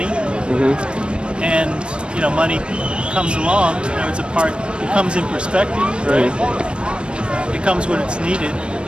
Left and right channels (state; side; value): late; left; 0.056 ms